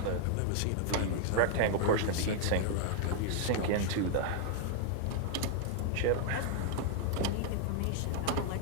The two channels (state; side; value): different; both; correlation 0.00